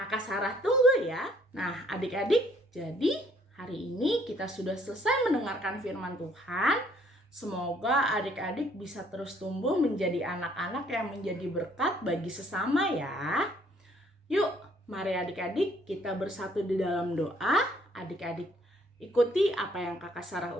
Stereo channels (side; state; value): both; normal; correlation 0.63